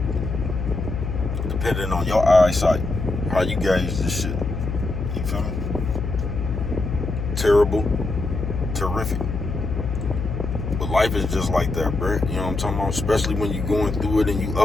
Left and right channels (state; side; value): noise; left; hum, 3 dB below the sound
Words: Depending on your eyesight, how you gauge this shit. You feel me? Terrible, terrific. But life is just like that, bro. You know what I'm talking about? Especially when you going through it and you